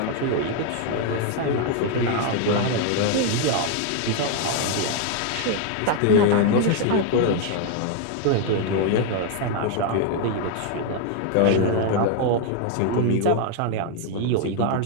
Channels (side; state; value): both; different; correlation 0.00